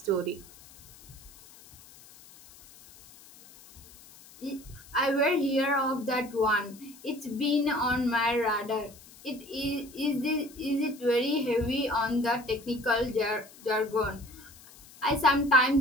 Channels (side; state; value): left; noise; hiss, 22 dB below the sound